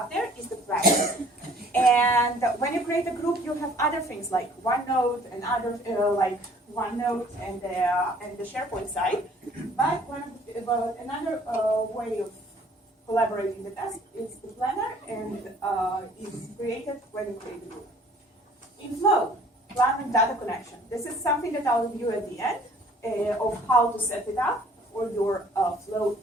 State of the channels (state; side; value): normal; both; correlation 0.55